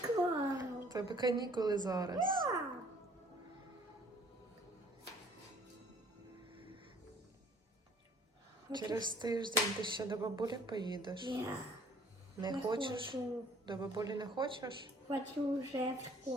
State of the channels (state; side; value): normal; both; correlation 0.56